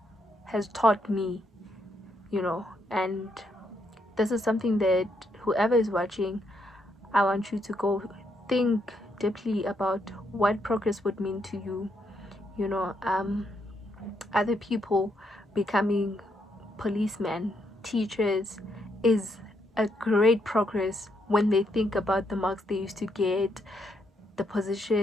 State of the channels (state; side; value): normal; both; correlation 0.77